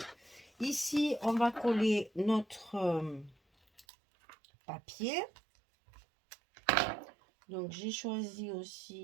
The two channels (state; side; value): drops out; left; at 3.9 s